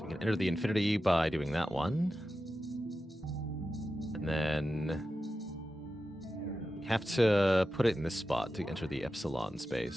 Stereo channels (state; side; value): normal; both; correlation 0.92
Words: we can enter the infinity by doing that one. And then we have to put it in this spot to enter the epsilon